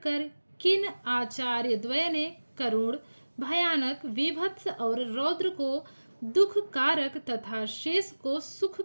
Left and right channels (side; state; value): both; inverted; correlation -1.00